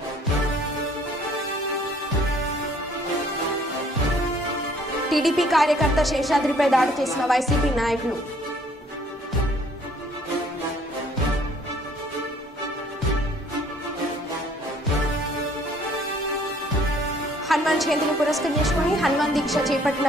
టీడీపీ కార్యకర్త శేషాద్రిపై దాడి చేసిన వైసీపీ నాయకులు. హనుమాన్ జయంతిని పురస్కరించుకుని హనుమాన్ దీక్ష చేపట్టిన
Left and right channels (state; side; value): normal; both; correlation 0.59